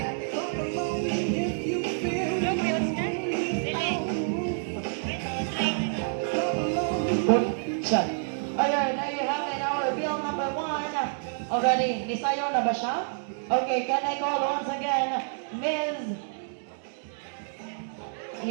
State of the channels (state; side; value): silent; left; 59 dB below the other